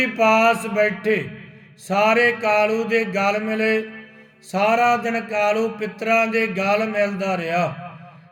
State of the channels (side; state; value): both; identical; correlation 1.00